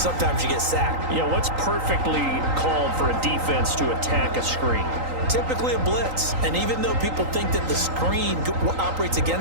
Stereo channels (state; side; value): late; left; 3.8 ms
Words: you get sacked. Yeah, what's perfectly called for a defense to attack a screen? Typically a blitz, and even though people think that the screen operates